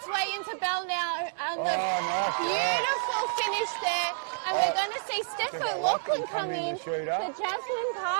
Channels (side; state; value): left; silent; digital silence